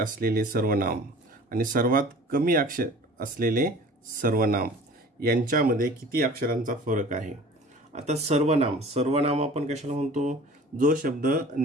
सर्वनाम आणि सर्वात कमी अक्षर असलेले सर्वनाम यांच्यामध्ये किती अक्षरांचा फरक आहे? आता सर्वनाम आपण कशाला म्हणतो? जो शब्द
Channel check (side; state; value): both; normal; correlation 0.44